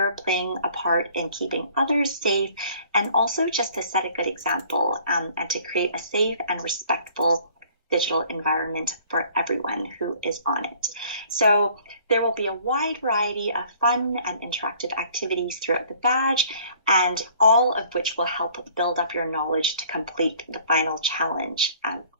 playing a part in keeping others safe, and also just to set a good example and to create a safe and respectful digital environment for everyone who is on it. So there will be a wide variety of fun and interactive activities throughout the badge, and all of which will help build up your knowledge to complete the final challenge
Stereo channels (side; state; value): both; inverted; correlation -0.56